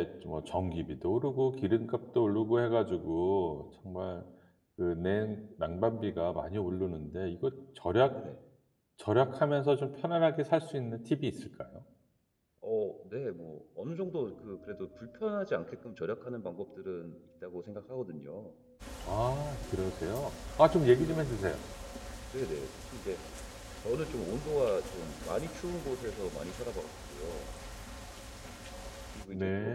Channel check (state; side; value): identical; both; correlation 1.00